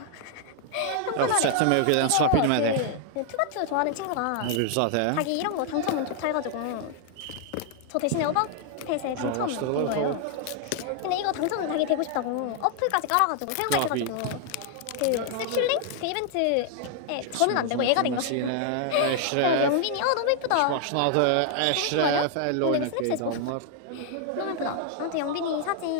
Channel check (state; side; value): different; both; correlation 0.00